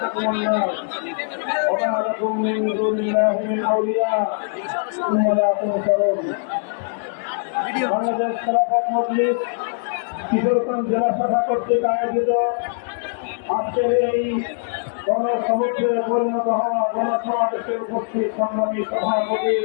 النار وما لكم من دون الله من أولياء ثم لا تنصرون বাংলাদেশ খেলাফত মজলিস কিশোরগঞ্জ জেলা শাখা কর্তৃক আয়োজিত আজকের এই গণসমুদ্রে পরিণত হওয়া গণসমাবেশে উপস্থিত সংগ্রামী সভাপতি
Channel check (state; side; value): silent; right; digital silence